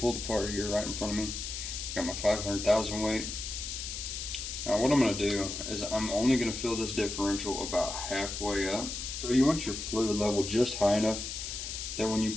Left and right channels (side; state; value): left; noise; hiss, 6 dB below the sound